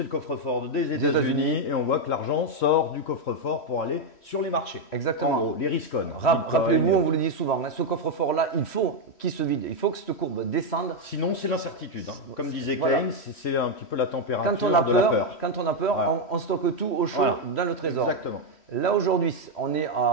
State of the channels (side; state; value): right; late; 3.1 ms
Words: le coffre-fort des États-Unis et on voit que l'argent sort du coffre-fort pour aller sur les marchés. Exactement. En gros, les riscons. Rappelez-vous, on vous le dit souvent, ce coffre-fort-là, il faut qu'il se vide. Il faut que cette courbe descende. Sinon, c'est l'incertitude. Comme disait Keynes, c'est un petit peu la température de la peur. Quand on a peur, voilà. on stocke tout au chaud dans le trésor. Exactement. Là, aujourd'hui, on est